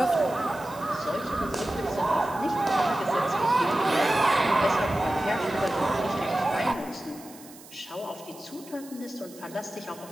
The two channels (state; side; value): noise; right; hiss, 20 dB below the sound